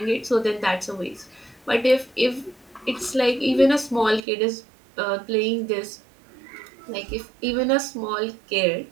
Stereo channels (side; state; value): left; drops out; at 4.2 s